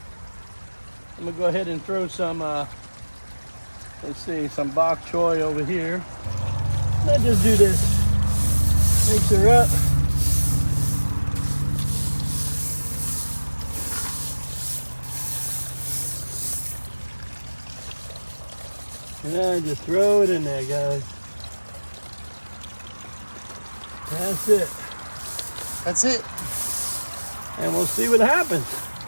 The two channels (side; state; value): both; inverted; correlation -1.00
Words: I'm gonna go ahead and throw some, some bok choy over here. Let's just do this. Mix her up. And then just throw it in there, guys. That's it. That's it. And we'll see what happens.